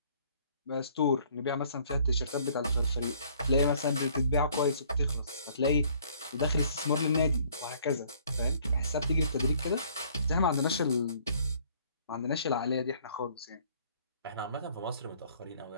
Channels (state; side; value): inverted; both; correlation -0.59